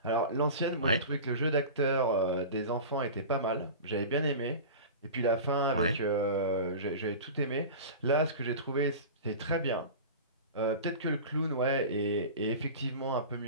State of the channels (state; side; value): inverted; both; correlation -0.32